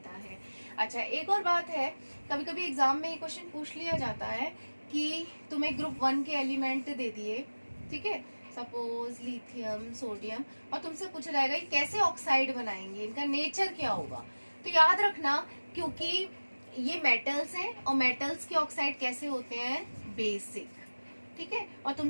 है। अच्छा एक और बात है, कभी कभी एग्जाम में ये क्वेश्चन पूछ लिया जाता है कि तुम्हें ग्रुप 1 के एलिमेंट दे दिए, ठीक है, सपोज लिथियम, सोडियम, और तुमसे पूछा जाएगा कि कैसे ऑक्साइड बनाएंगे, इनका नेचर क्या होगा। तो याद रखना, क्योंकि ये मेटल्स हैं और मेटल्स के ऑक्साइड कैसे होते हैं, बेसिक। ठीक है, और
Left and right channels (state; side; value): inverted; both; correlation -1.00